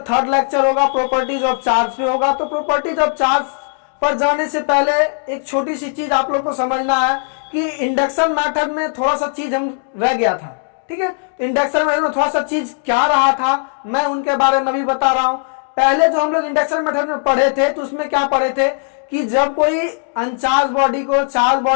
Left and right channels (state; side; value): silent; right; 65 dB below the other